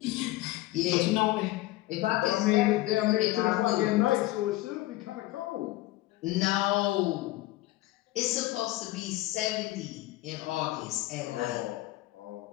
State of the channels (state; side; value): quieter; right; 17.5 dB